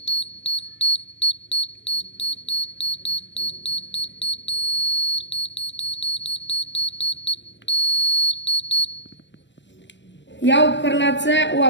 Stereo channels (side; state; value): right; late; 0.53 ms